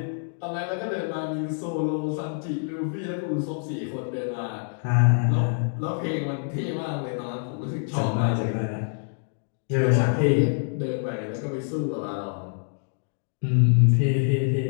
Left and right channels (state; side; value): silent; right; digital silence